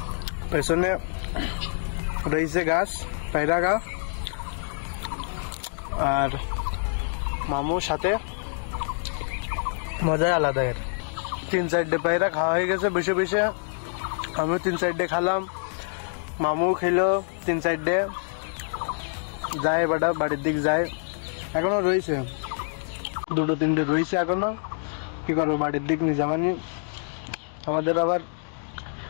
পেছনে রয়েছে গাছ। পায়রা খা আর মামুর সাথে মজাই আলাদা। এর 3-4টে পায়রা খাওয়া হয়ে গেছে বসে বসে, আমিও 3-4টে খালাম, মামু খেলো 3-4টে, যায় বাড়া বাড়ির দিক যায়। এখনো রয়েছে 2-3টে রয়েছে এখনো, কি করবো বাড়ির দিক নিয়ে যাবানি। আমাদের আবার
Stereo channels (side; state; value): right; silent; digital silence